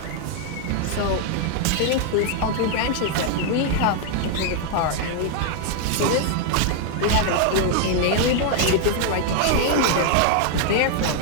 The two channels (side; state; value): both; different; correlation 0.00